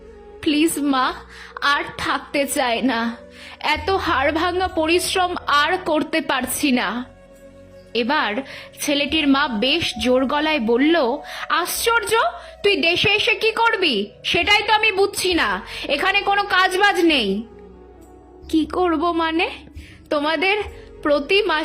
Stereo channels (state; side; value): identical; both; correlation 1.00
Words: প্লিজ মা, আর থাকতে চায় না, এত হাড় ভাঙা পরিশ্রম আর করতে পারছি না। এবার ছেলেটির মা বেশ জোর গলায় বলল, আশ্চর্য, তুই দেশে এসে কি করবি সেটাই তো আমি বুঝছি না, এখানে কোনো কাজবাজ নেই। কি করব মানে? তোমাদের প্রতি